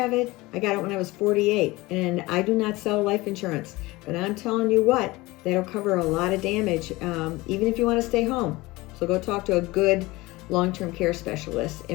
it. I got it when I was 48, and I do not sell life insurance. But I'm telling you what, that'll cover a lot of damage, even if you want to stay home. So go talk to a good long-term care specialist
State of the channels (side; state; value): right; quieter; 21.0 dB